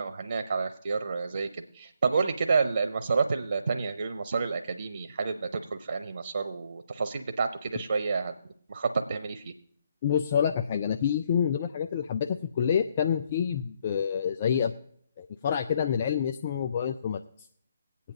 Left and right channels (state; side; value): inverted; both; correlation -0.72